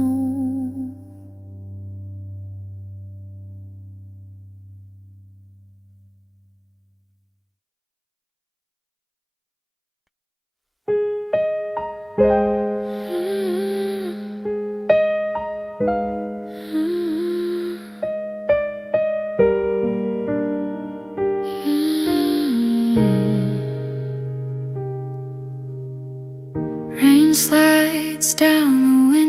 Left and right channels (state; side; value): identical; both; correlation 1.00